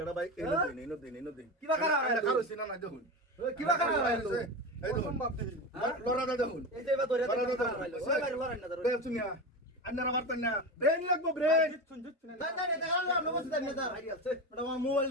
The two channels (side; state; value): both; normal; correlation 0.22